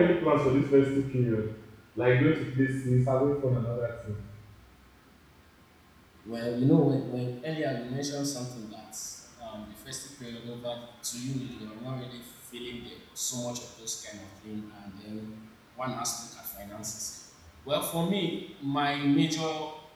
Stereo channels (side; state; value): both; identical; correlation 1.00